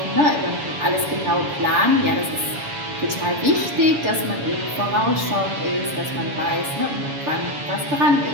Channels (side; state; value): left; late; 7.1 ms